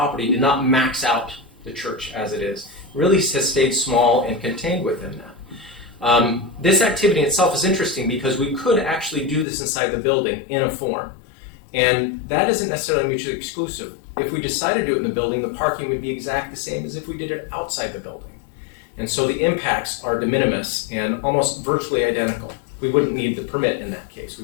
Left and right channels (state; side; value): drops out; right; at 9.5 s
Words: did not max out the church as it is. It really has stayed small and contained within that. This activity itself is interesting because we could actually do this inside the building in a form. And that isn't necessarily mutually exclusive. If we decided to do it in the building, the parking would be exactly the same as if we did it outside the building. And so the impacts are de minimis and almost virtually identical. We wouldn't need the permit in that case.